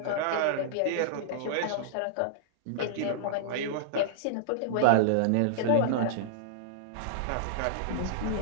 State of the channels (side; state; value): both; different; correlation -0.02